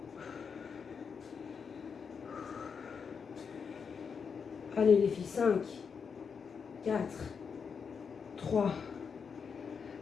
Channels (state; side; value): quieter; right; 6.1 dB